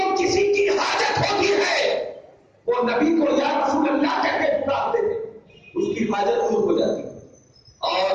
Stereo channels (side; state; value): both; identical; correlation 1.00